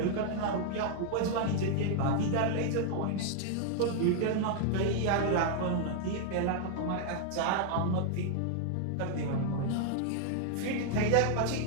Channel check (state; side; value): different; both; correlation 0.00